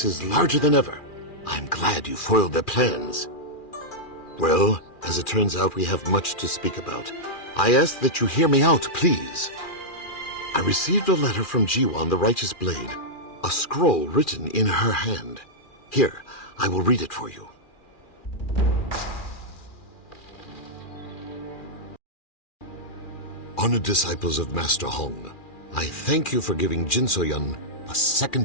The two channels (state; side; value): late; right; 2.4 ms